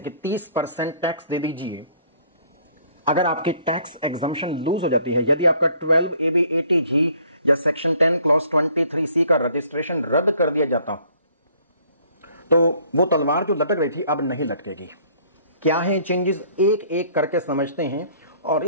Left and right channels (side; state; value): both; inverted; correlation -0.59